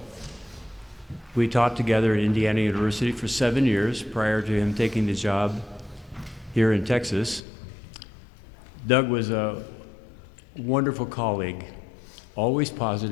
We taught together at Indiana University for 7 years prior to him taking the job here in Texas. Doug was a wonderful colleague, always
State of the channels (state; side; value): drops out; right; at 7.4 s